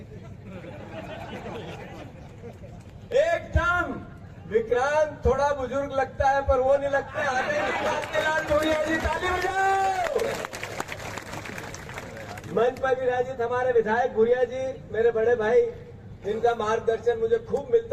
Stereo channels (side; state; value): both; identical; correlation 1.00